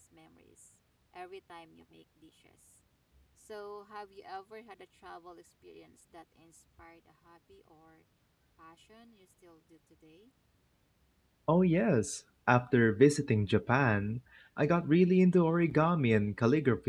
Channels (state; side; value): identical; both; correlation 1.00